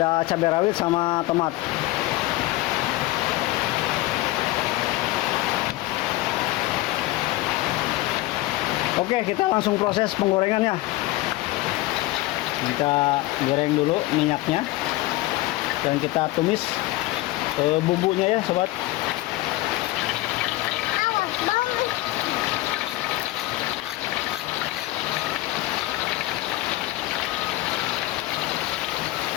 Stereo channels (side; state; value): right; quieter; 17.9 dB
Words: cabai rawit sama tomat. Oke, kita langsung proses penggorengannya. Kita goreng dulu minyaknya, dan kita tumis bumbunya ya sobat.